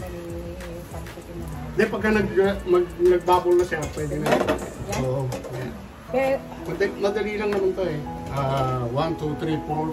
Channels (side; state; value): both; identical; correlation 1.00